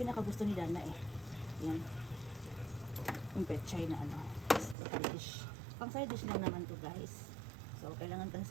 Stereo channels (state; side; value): drops out; left; at 4.8 s